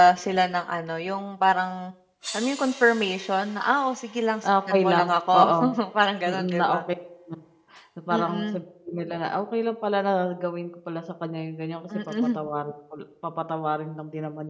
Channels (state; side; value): identical; both; correlation 1.00